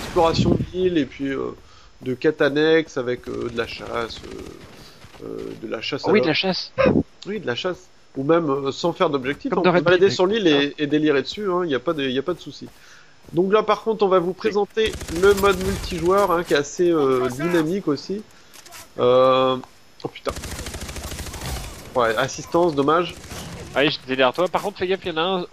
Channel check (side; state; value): both; identical; correlation 1.00